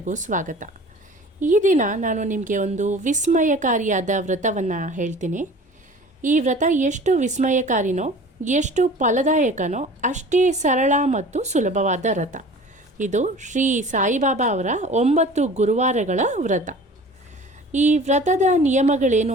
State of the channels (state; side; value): normal; both; correlation 0.43